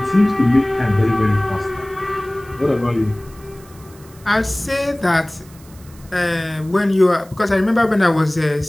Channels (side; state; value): right; noise; hiss, 25 dB below the sound